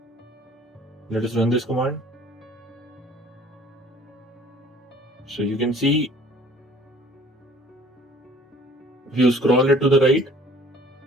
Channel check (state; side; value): normal; both; correlation 0.52